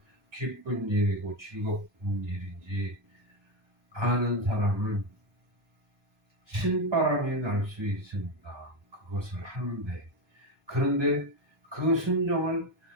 기쁜 일이고 즐거운 일인지 아는 사람은 신바람이 날 수 있습니다. 그것을 하는데 그런데 그 순종을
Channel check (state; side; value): normal; both; correlation 0.12